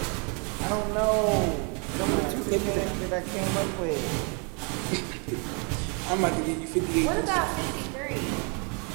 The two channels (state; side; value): quieter; left; 35.2 dB